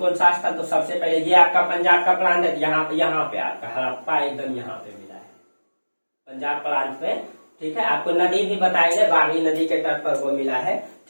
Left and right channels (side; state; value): both; inverted; correlation -1.00